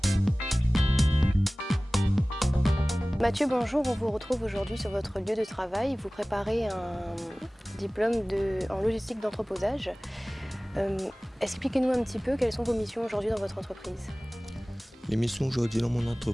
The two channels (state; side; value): normal; both; correlation 0.98